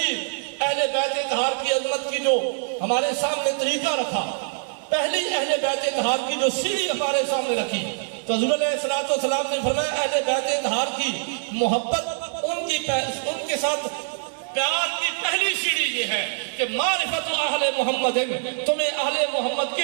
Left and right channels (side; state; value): left; silent; digital silence